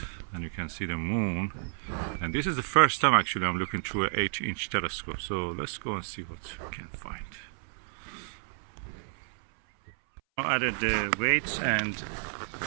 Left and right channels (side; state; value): left; silent; 57 dB below the other